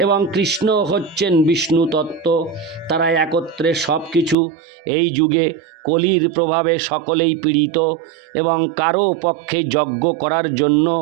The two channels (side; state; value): left; drops out; at 4.4 s